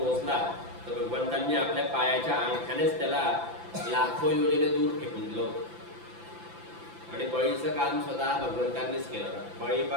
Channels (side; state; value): left; late; 5.9 ms